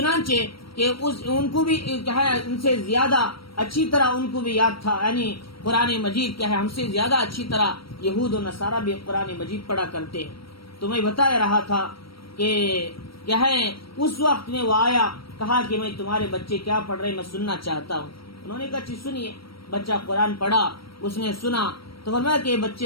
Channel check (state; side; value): late; right; 0.75 ms